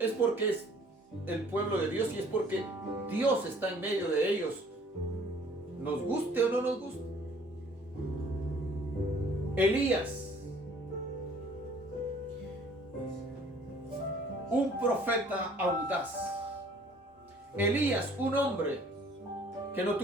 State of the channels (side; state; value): both; normal; correlation 0.55